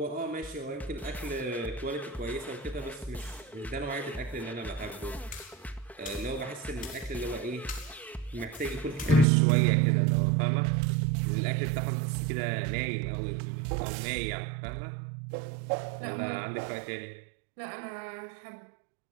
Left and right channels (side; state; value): left; drops out; at 9.2 s